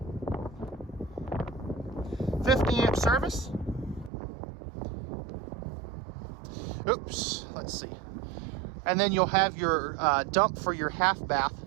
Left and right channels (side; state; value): left; drops out; at 4.1 s